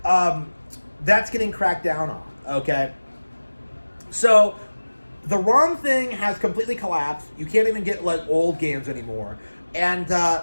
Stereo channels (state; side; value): inverted; both; correlation -1.00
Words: that's getting cracked down on. Okay, so the ROM thing has completely collapsed. You can't even get like old games anymore. And